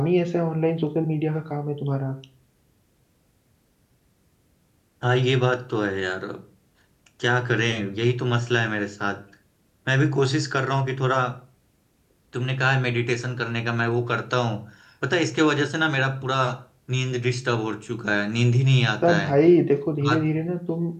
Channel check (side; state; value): both; identical; correlation 1.00